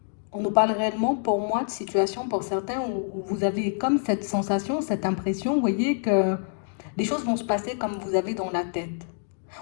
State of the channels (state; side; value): silent; right; digital silence